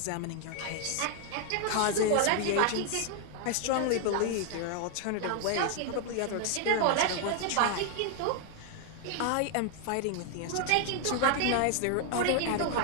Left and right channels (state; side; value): different; both; correlation 0.00